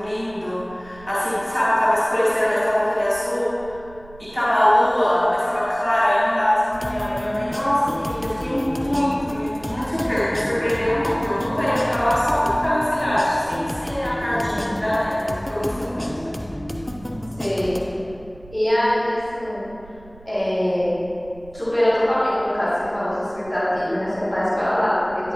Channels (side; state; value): right; noise; rumble, 22 dB below the sound